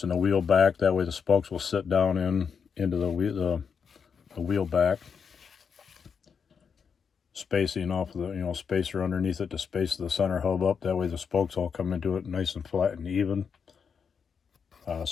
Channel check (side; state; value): right; quieter; 6.4 dB